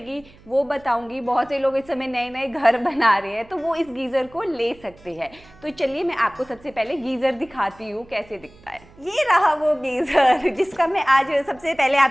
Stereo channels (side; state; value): right; noise; hum, 25 dB below the sound